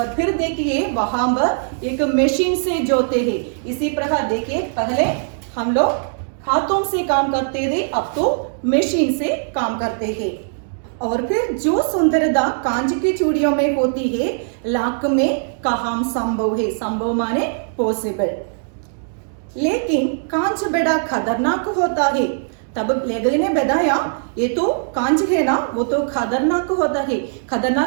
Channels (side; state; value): left; silent; digital silence